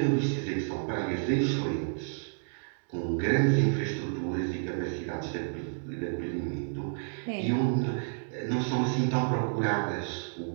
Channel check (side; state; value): left; silent; digital silence